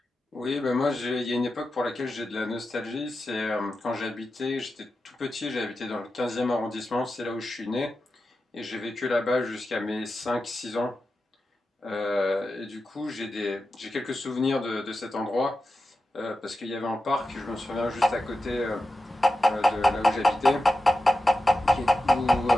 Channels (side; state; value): both; normal; correlation 0.92